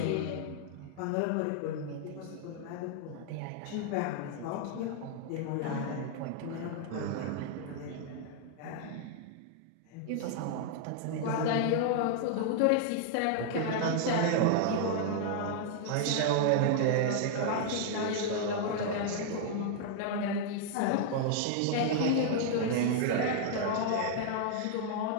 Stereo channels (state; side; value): different; both; correlation 0.00